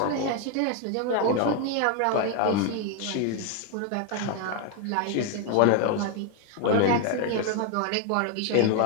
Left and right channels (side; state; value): both; different; correlation 0.01